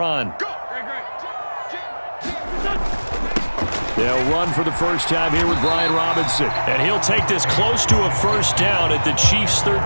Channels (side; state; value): both; inverted; correlation -1.00